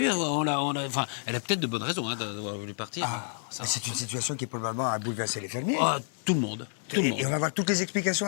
enfin, elle a peut-être de bonnes raisons d'avoir voulu partir. Mais c'est une situation qui probablement a bouleversé les fermiers. Ah, tout le monde. Tout le monde. Et on va voir toutes les explications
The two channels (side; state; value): right; silent; 58 dB below the other